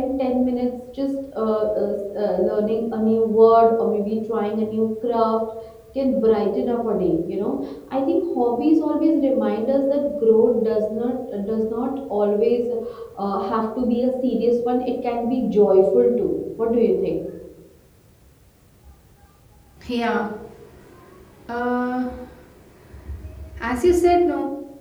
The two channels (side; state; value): both; identical; correlation 1.00